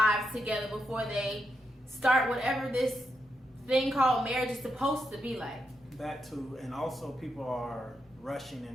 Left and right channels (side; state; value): both; normal; correlation 0.84